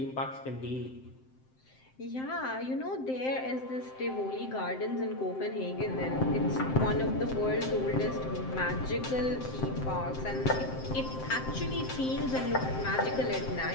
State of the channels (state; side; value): late; right; 7.7 ms